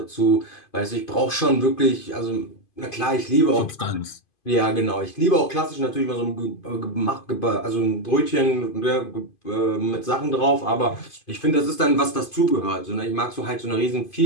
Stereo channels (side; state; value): right; late; 2.5 ms